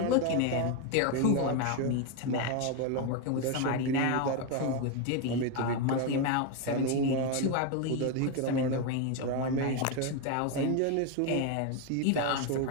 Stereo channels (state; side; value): different; both; correlation 0.02